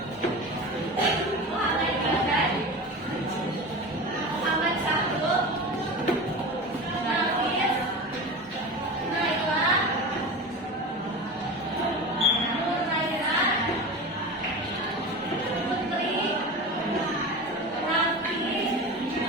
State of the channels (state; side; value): normal; both; correlation 0.29